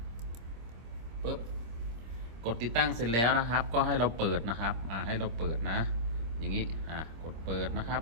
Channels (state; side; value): late; left; 26 ms